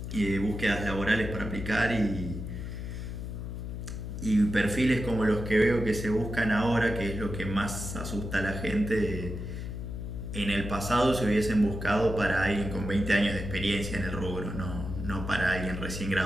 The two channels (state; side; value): noise; left; hum, 6 dB below the sound